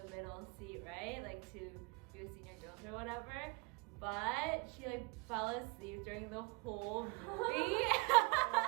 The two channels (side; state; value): left; quieter; 28.2 dB